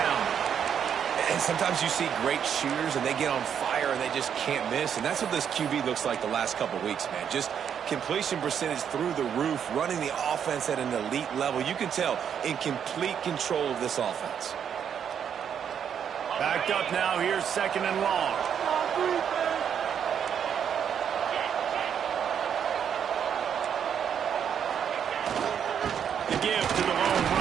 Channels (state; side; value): quieter; left; 8.2 dB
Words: And sometimes you see great shooters, and they get on fire, and they just can't miss. And that's what this QB looks like the last couple weeks, man. Just completion percentage through the roof, running the offense at an elite level. You can tell in complete control of this offense. Backed up now. Here's second and long. The give to the lone